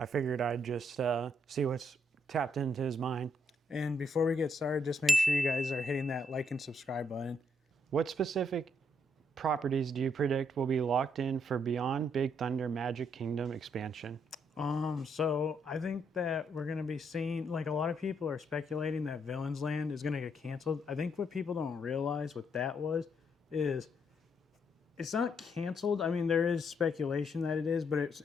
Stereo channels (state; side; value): normal; both; correlation 0.74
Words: figured I'd just see what's tapped into his mind. And before we get started, just make sure you guys are hitting that like and subscribe button. What specific properties do you predict will be locked in for Beyond Big Thunder Magic Kingdom expansion? So I think that we're going to be seeing, like, a lot of people are speculating that Villains Land is going to get canceled. I think what people don't realize what that is it's not canceled. I mean, there is speculation that it is, but it's,